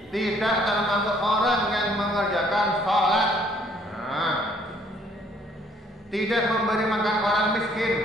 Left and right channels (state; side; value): normal; both; correlation 0.63